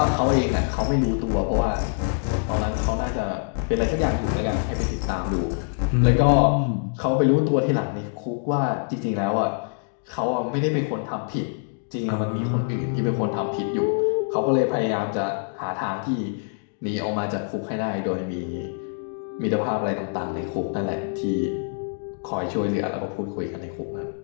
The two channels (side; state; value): right; silent; digital silence